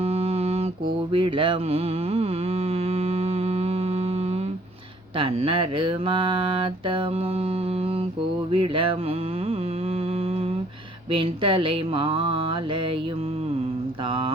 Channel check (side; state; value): both; normal; correlation 0.60